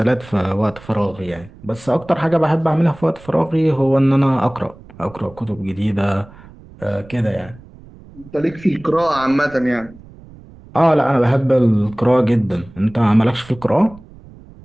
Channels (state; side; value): noise; right; rumble, 21 dB below the sound